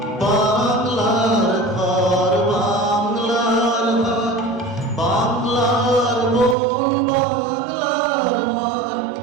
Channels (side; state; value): left; drops out; at 6.6 s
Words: বাংলার ঘর, বাংলার হাট, বাংলার বন, বাংলার মাঠ,